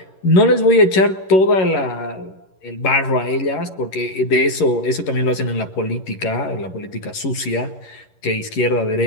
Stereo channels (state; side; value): late; right; 11 ms